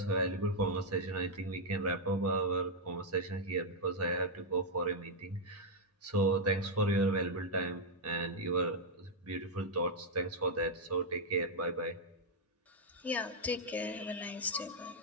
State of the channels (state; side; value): normal; both; correlation -0.02